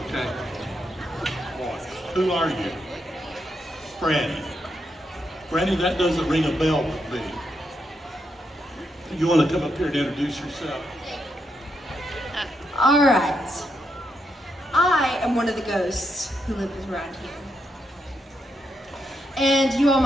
okay? Who are you? Franny. Franny, that doesn't ring a bell with me. You want to come up here and introduce yourself? All right. I am one of the ghosts who lives around here. And you all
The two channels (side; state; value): both; normal; correlation 0.81